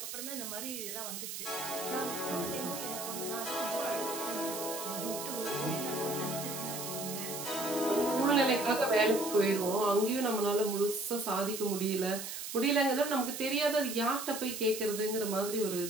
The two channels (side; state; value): right; noise; hiss, 7 dB below the sound